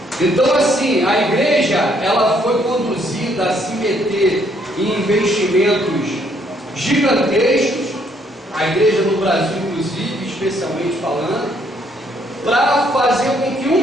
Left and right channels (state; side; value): normal; both; correlation 0.68